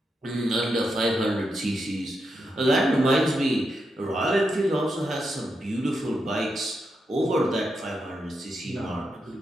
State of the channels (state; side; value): normal; both; correlation 0.85